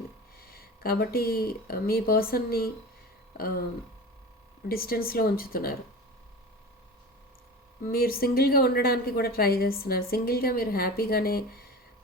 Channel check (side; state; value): both; normal; correlation 0.33